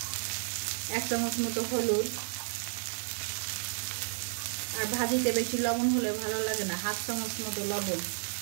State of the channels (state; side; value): silent; left; digital silence